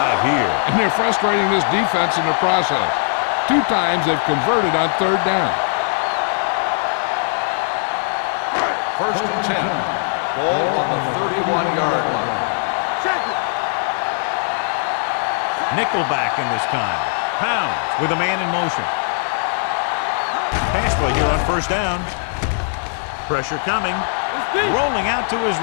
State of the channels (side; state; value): right; silent; digital silence